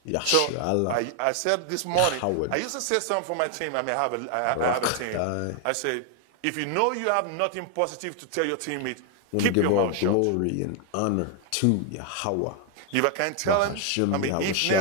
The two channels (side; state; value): both; different; correlation 0.00